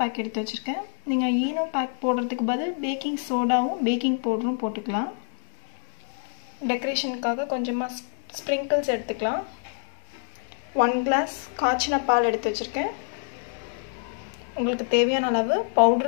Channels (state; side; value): silent; right; 57 dB below the other